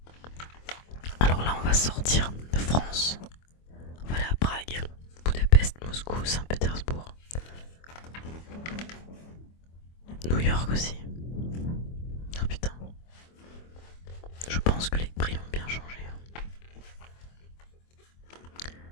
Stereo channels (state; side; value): late; right; 24 ms